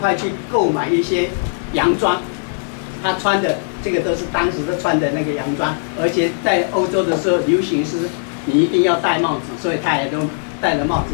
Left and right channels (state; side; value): silent; right; digital silence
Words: 去购买一些洋装。他穿的这个都是当时的穿的那个洋装，而且在欧洲的时候流行是你一定要戴帽子，所以他也都戴了帽子。